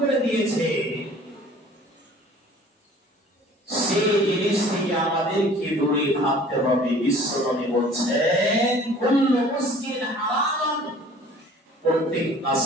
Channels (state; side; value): normal; both; correlation 0.49